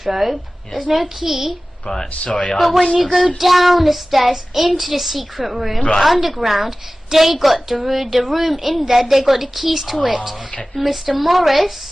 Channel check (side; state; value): both; normal; correlation 0.97